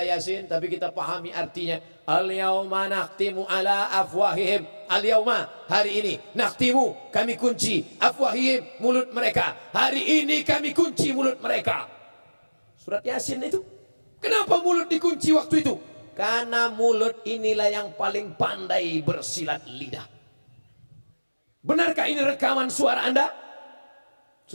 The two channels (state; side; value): inverted; both; correlation -1.00